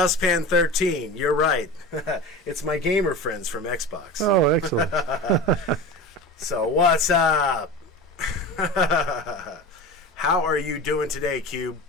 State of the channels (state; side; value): normal; both; correlation 0.31